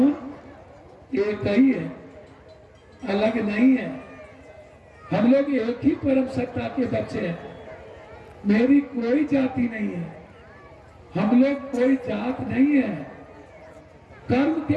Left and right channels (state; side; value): identical; both; correlation 1.00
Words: एक ही है, अलग नहीं है। हम लोग एक ही परम सत्ता के बच्चे हैं। मेरी कोई जाति नहीं है, हम लोग कोई जात नहीं है। कर्म के